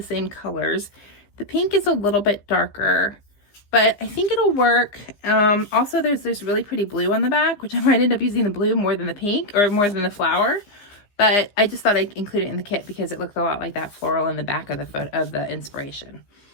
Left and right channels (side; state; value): right; late; 15 ms